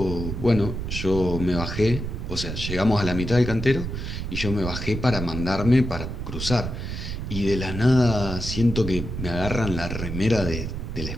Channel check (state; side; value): noise; right; rumble, 5 dB below the sound